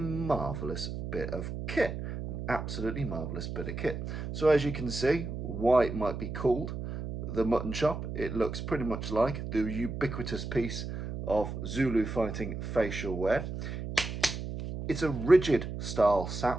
bit of kit, an absolutely marvelous bit of kit. So as you can see why it might be called the Muttonchop, it looks pretty much like the ubiquitous piece of Zulu fighting facial wear. It's a rigid style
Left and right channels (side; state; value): right; noise; hum, 6 dB below the sound